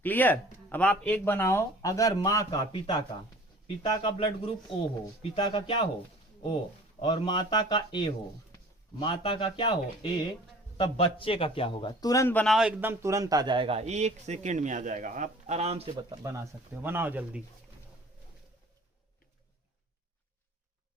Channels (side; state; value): both; normal; correlation 0.47